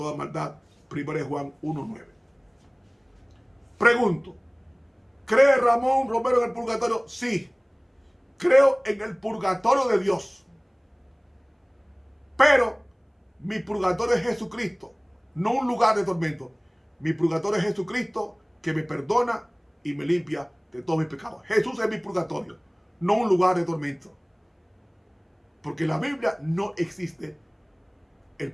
maldad. 1 Juan 1:9. Pregunto: ¿cree Ramón Romero en el purgatorio? Sí, creo en el purgatorio de Dios. Pero mi purgatorio es Jesucristo, no un lugar de tormento. Mi purgatorio es Jesucristo, que me perdona y me limpia de todos mis pecados. Jesús es mi purgatorio, no un lugar de tormento. Porque en la Biblia no existe el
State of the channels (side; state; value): both; identical; correlation 1.00